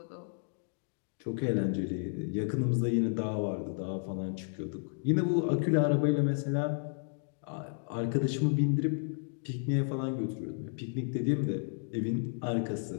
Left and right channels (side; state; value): right; silent; digital silence